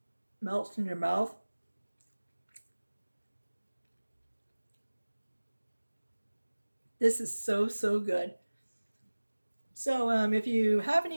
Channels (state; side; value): inverted; both; correlation -1.00